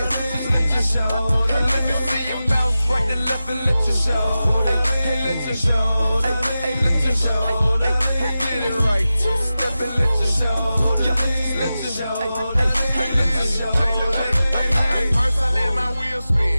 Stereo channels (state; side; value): inverted; both; correlation -0.94